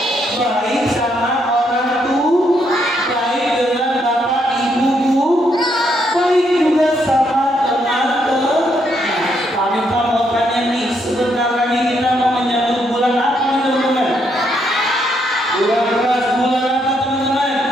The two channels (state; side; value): normal; both; correlation 0.75